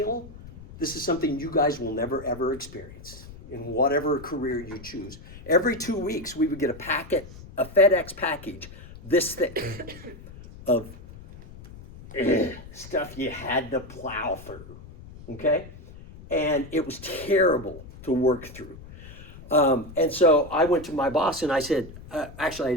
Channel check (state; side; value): noise; left; rumble, 17 dB below the sound